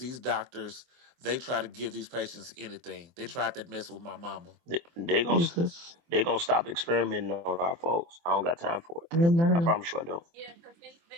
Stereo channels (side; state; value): left; late; 24 ms